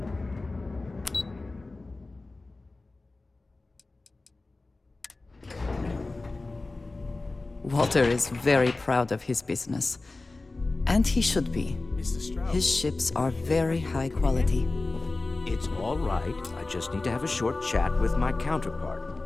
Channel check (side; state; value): right; quieter; 3.3 dB